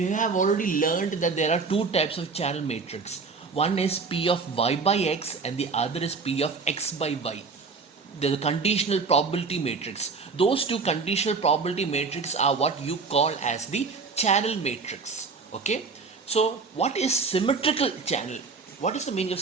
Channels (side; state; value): left; quieter; 4.7 dB